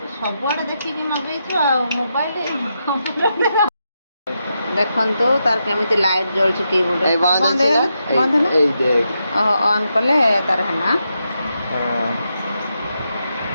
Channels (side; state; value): both; inverted; correlation -0.84